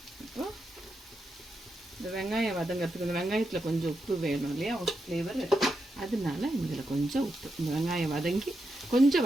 இப்போ இந்த வெங்காயம் வதங்கிறதுக்கு இந்த வெங்காயத்தில் கொஞ்சம் உப்பு வேணும் இல்லையா, ஃப்ளேவர். அதனால இதில் கொஞ்சம் உப்பு, இந்த வெங்காயம் வதங்கி கொஞ்சம்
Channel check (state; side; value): normal; both; correlation 0.85